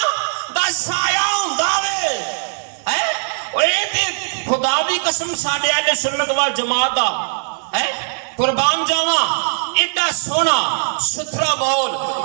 دا سایہ ہوندا وے اور اے تے خدا دی قسم ساڈے اہل سنت وال جماعت دا قربان جاواں ایڈا سونا ستھرا ماحول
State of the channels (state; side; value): silent; left; digital silence